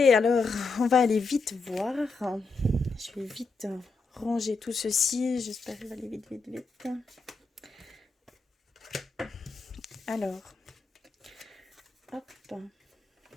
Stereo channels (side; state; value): right; quieter; 4.0 dB